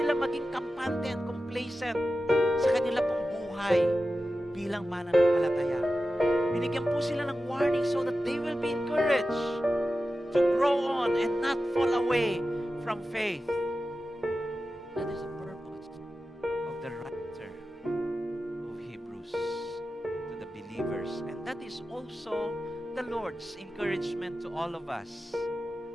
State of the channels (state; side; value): normal; both; correlation 0.93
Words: maging kampante and complacent sa kanila pong buhay bilang mananampalataya. binigyan po sila ng warning so that they will be encouraged to grow on and not fall away from faith. That is the purpose of the writer of Hebrews to the believers. And that is also the Lord's encouragement to all of us.